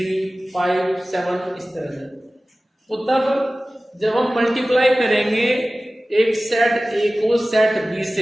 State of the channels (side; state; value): both; normal; correlation 0.97